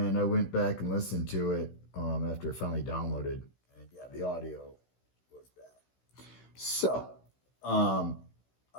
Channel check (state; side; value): late; right; 16 ms